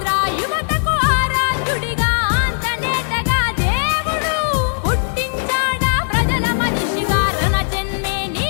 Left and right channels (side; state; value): right; silent; digital silence